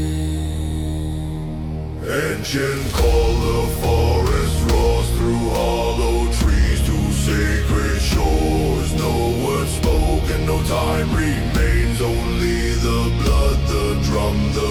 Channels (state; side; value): identical; both; correlation 1.00